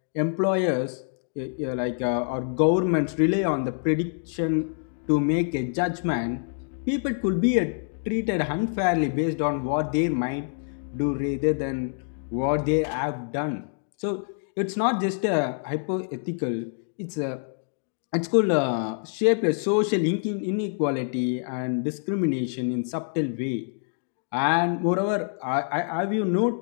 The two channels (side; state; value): right; silent; digital silence